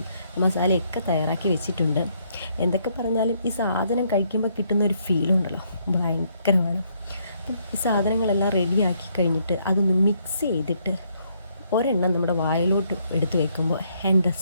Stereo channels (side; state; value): both; inverted; correlation -0.72